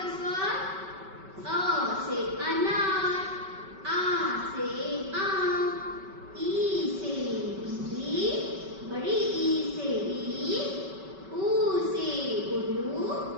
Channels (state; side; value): late; left; 5.2 ms